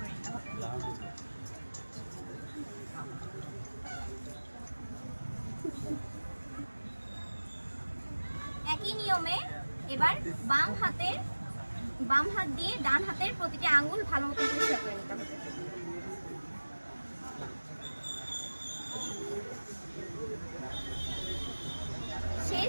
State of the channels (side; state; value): both; inverted; correlation -1.00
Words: করে নিতে হবে। একই নিয়মে এবার বাম হাত দিয়ে ডান হাতের প্রতিটি আঙ্গুল ভালো মতন পরিষ্কার করে নিতে হবে।